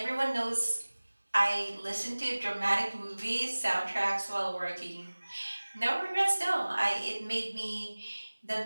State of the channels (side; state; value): both; inverted; correlation -1.00